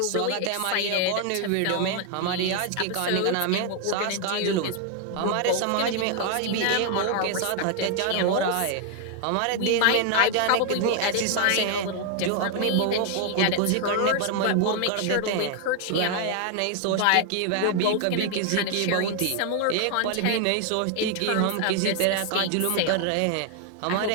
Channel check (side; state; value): both; different; correlation 0.00